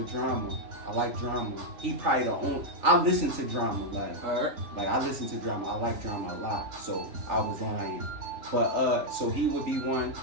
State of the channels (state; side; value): late; left; 3.4 ms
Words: Drama. I like Drama. He probably the only. I listen to Drama like I listen to Drama. I like Drama a lot. So I was lying. But so he would be one.